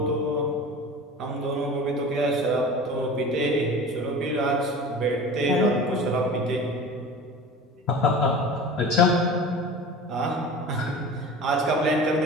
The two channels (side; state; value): both; normal; correlation 0.36